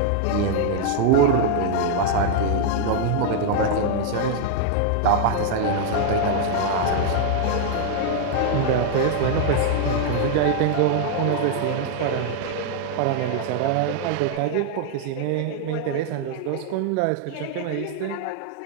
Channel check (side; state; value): both; different; correlation 0.00